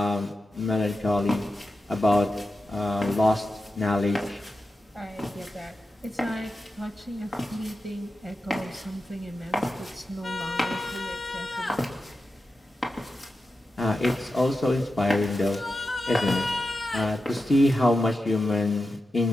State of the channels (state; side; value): normal; both; correlation 0.91